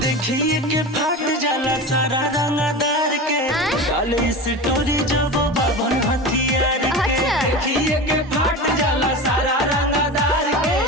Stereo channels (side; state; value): both; normal; correlation 0.28